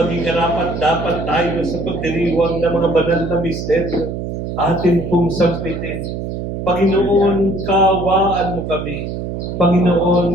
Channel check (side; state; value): right; noise; hum, 5 dB below the sound